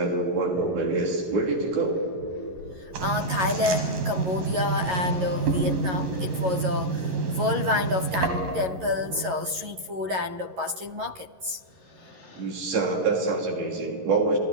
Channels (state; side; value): late; left; 11 ms